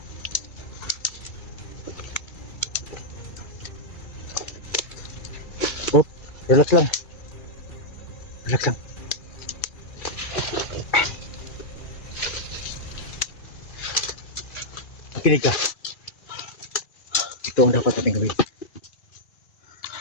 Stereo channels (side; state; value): right; late; 2.3 ms